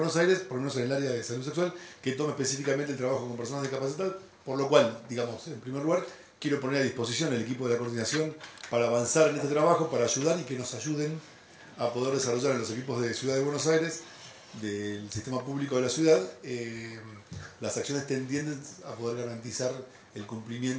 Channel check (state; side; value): identical; both; correlation 1.00